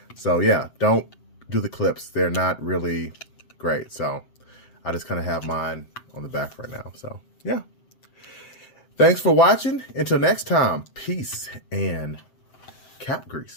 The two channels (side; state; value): right; late; 7.7 ms